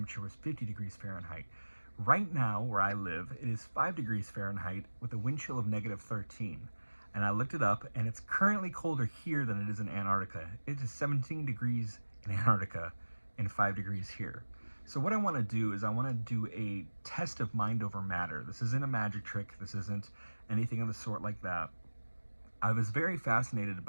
was 50 degrees Fahrenheit. Right now, where I live, it is 5 degrees Fahrenheit with a wind chill of -13. And I looked it up, and it's currently colder here than it is in Antarctica. It is 17 degrees in Antarctica and 5 degrees here. So what I want to do is I want to do a test of mind over matter. This isn't a magic trick. This isn't anything of the sort like that. I was very fascinated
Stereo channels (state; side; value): inverted; both; correlation -1.00